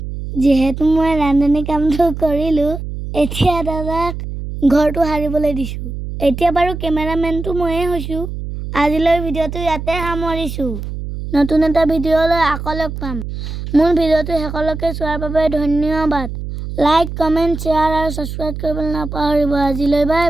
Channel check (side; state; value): right; noise; hum, 7 dB below the sound